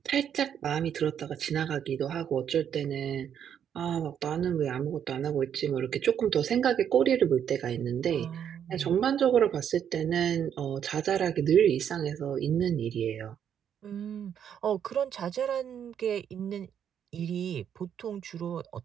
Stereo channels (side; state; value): left; quieter; 8.8 dB